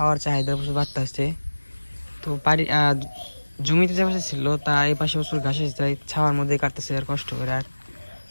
চাহিদা প্রচুর বাড়তেছে। তো বাড়ি জমিতে যে পাশে ছিল তা এই পাশে প্রচুর ঘাস এসে যায়, ছাওয়ার মধ্যে কাটতেছে আর কষ্ট করে, আর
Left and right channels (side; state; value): both; inverted; correlation -1.00